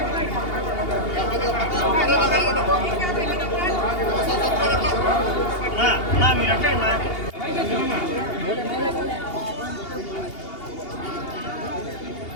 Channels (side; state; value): right; late; 2.8 ms